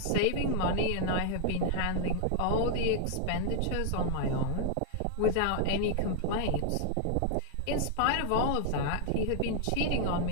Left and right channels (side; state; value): both; different; correlation 0.00